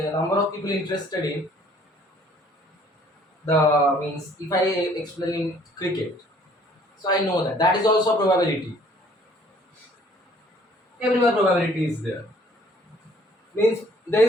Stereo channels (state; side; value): normal; both; correlation 0.58